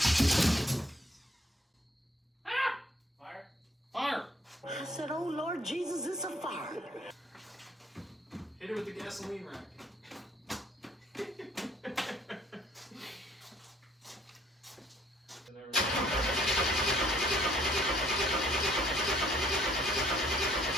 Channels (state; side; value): normal; both; correlation 0.63